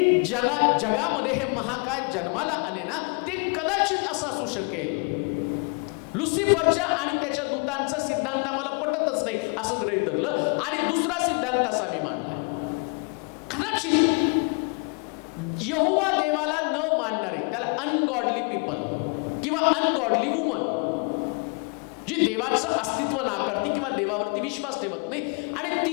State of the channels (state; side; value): quieter; right; 35.9 dB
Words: ज्याला जगामध्ये हे महाकाय जन्माला आले ना, ते कदाचित असं असू शकेल. लुसिफरच्या आणि त्याच्या दूतांचा सिद्धांत आम्हाला पटतच नाही असं गृहीत धरलं आणि दुसरा सिद्धांत असा मी मांडला. कदाचित यहोवा देवाला न मानणारे, त्याला अनगॉडली पीपल किंवा अनगॉडली वुमन, जी देवाचं अस्तित्व नाकारती किंवा देवावरती विश्वास ठेवत नाही, आणि